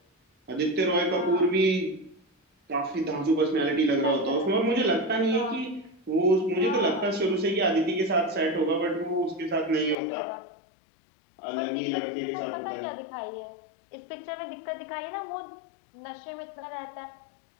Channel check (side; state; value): right; drops out; at 10.0 s